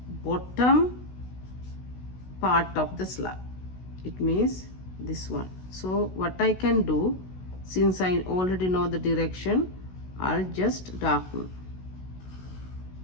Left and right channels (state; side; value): late; right; 16 ms